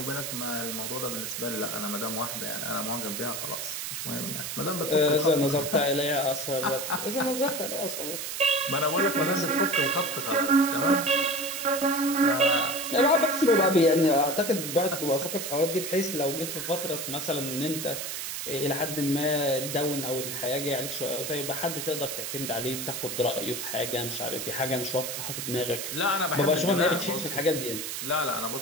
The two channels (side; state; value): right; noise; hiss, 5 dB below the sound